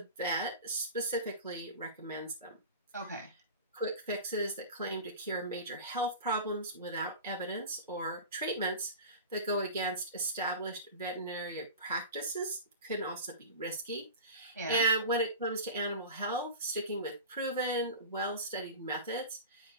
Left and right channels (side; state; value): both; inverted; correlation -0.32